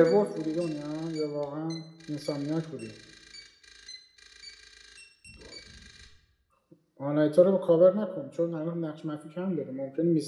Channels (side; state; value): both; identical; correlation 1.00